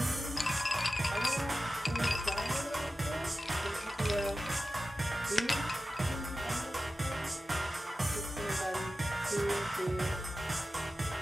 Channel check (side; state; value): both; normal; correlation 0.94